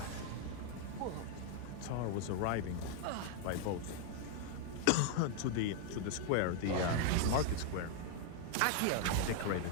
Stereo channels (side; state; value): both; different; correlation 0.00